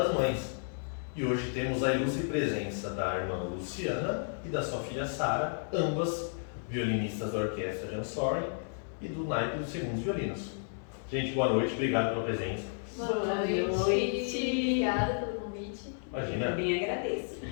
Mães. E hoje temos a ilustre presença da irmã Luciana e da sua filha Sara, ambas violinistas da Orquestra Jansori e do naipe dos segundos violinos. Gente, boa noite, obrigado pela presença. Boa noite. Obrigada pelo convite. Imagina. Eu bem agradeço.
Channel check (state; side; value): silent; right; 56 dB below the other